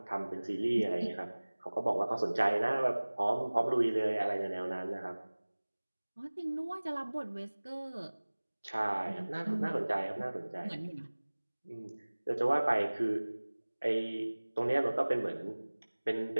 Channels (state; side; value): inverted; both; correlation -1.00